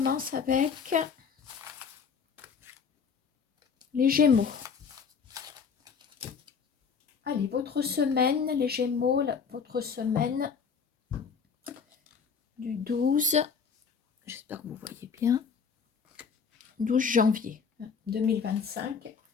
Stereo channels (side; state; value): right; quieter; 6.0 dB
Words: avec les Gémeaux. Allez, votre semaine, les Gémeaux, votre semaine du 12, j'espère que vous voyez bien, 12 janvier 2025.